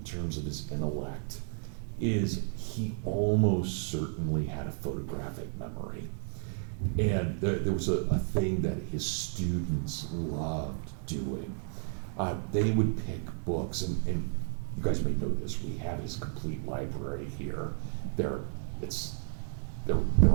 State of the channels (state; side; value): silent; left; 56 dB below the other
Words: terms of his intellect is he almost certainly had a photographic memory. And there was a thing that his students loved doing. They would pick books, and you guys may know this, we have his complete library here. They're